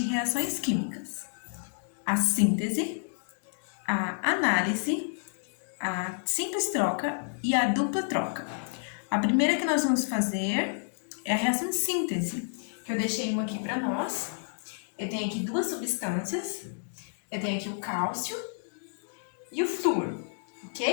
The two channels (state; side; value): silent; right; digital silence